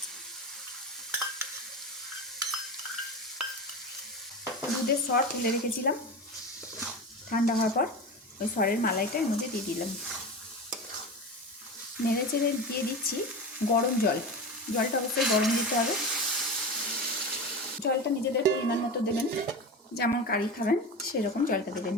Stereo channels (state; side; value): normal; both; correlation 0.26